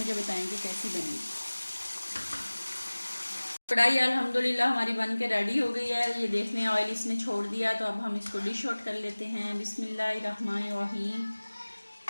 बताएंगे कैसी बनी। कढ़ाई अल्हम्दुलिल्लाह हमारी बन के रेडी हो गई है। ये देख लें, ऑयल इसने छोड़ दिया। तो अब हम इसको डिश आउट कर लेते हैं। बिस्मिल्लाहिर्रहमानिर्रहीम।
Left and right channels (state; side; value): inverted; both; correlation -1.00